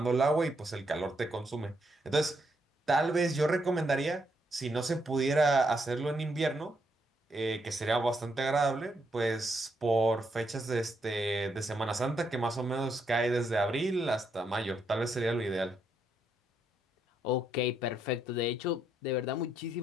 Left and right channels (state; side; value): normal; both; correlation 0.77